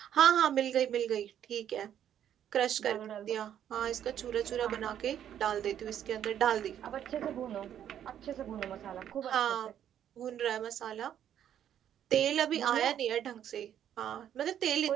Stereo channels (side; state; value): left; quieter; 10.1 dB